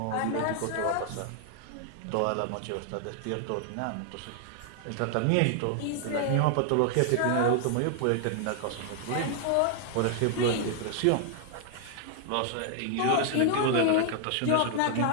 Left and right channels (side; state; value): both; different; correlation 0.00